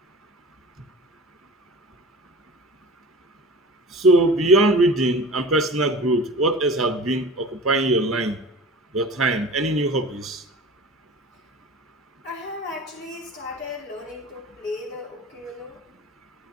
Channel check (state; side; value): normal; both; correlation 0.38